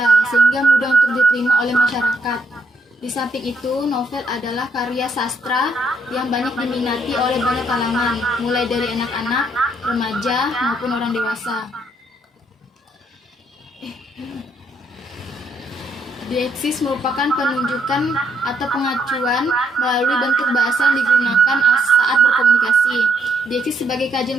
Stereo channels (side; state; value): both; normal; correlation 0.73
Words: sehingga mudah untuk diterima oleh masyarakat. Di samping itu, novel adalah karya sastra yang banyak diminati oleh banyak kalangan, mulai dari anak-anak, remaja, maupun orang dewasa. Dieksis merupakan penunjukan atau pengacuan melalui bentuk bahasa yang digunakan saat berkomunikasi. Dieksis sebagai